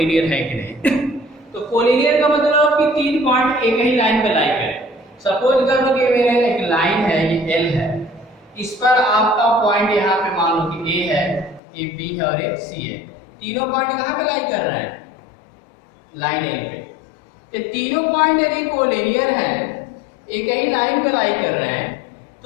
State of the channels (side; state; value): right; drops out; at 11.6 s